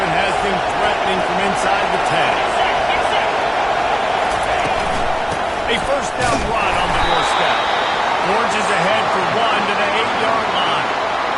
one has them threatening from inside the 10. A 1st down run on the doorstep. Orange is ahead for 1 to the 8-yard line.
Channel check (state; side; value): identical; both; correlation 1.00